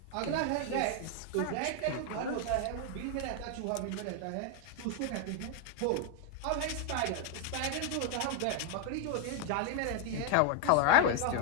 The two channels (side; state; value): both; different; correlation 0.00